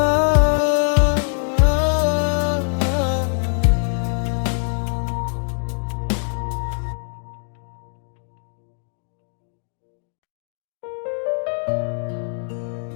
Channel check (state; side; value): silent; right; digital silence